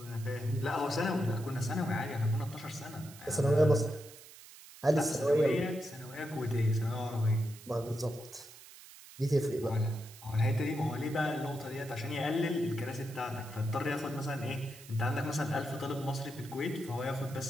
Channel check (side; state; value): right; noise; hiss, 18 dB below the sound